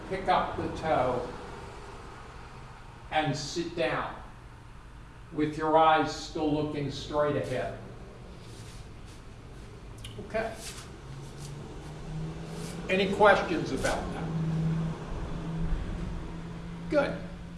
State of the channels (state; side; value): identical; both; correlation 1.00